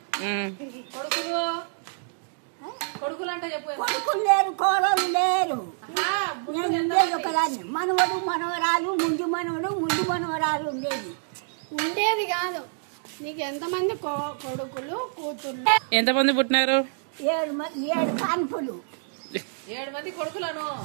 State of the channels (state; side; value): silent; left; digital silence